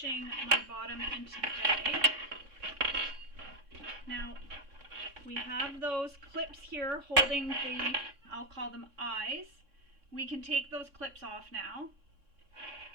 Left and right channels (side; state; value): left; late; 3.6 ms